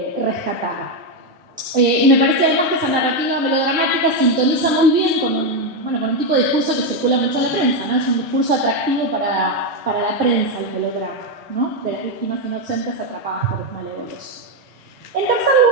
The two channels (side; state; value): both; normal; correlation 0.06